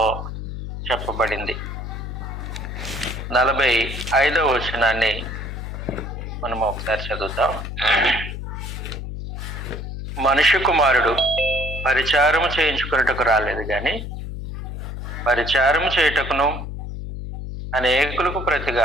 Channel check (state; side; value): noise; left; hum, 7 dB below the sound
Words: చెప్పబడింది. 45వ వచనాన్ని మనం ఒకసారి చదువుతాం. మనుష్య కుమారుడు పరిచారము చేయించుకున్నట్టుకు రాలేదు కానీ పరిచారము చేయుటకును అనేకులకు